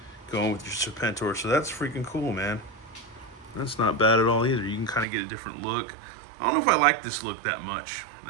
going with your Serpentor, so that's freaking cool, man. That's not bad at all either. You can kind of get a different look. I don't know if I like this look that much.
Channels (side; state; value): left; drops out; at 5.1 s